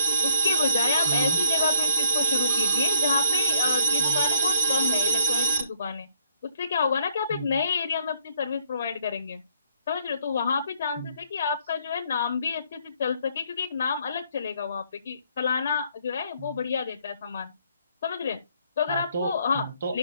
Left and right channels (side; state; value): both; inverted; correlation -0.67